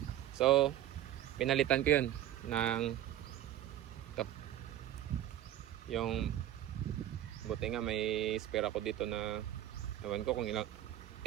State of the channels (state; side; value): quieter; left; 12.6 dB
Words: So pinalitan ko yun ng ito, yung buti nga may spare ako dito na ewan ko kung